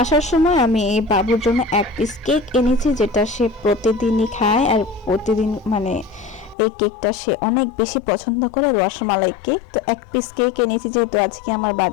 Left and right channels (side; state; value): right; drops out; at 6.6 s